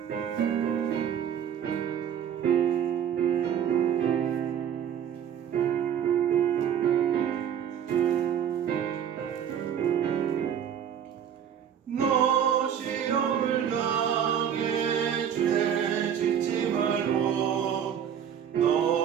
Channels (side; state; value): left; quieter; 8.8 dB